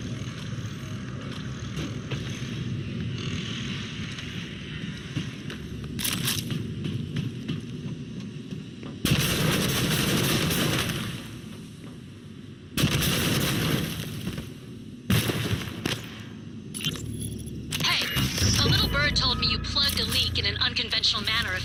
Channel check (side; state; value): both; identical; correlation 1.00